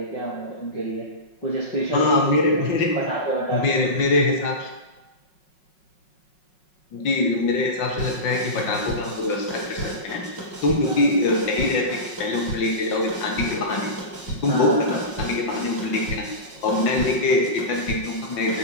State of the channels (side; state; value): right; late; 5.4 ms